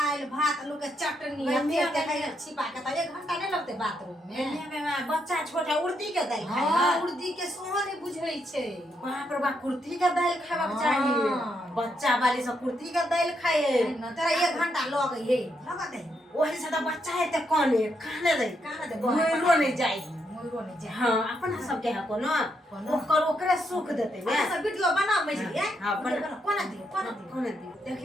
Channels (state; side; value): normal; both; correlation 0.78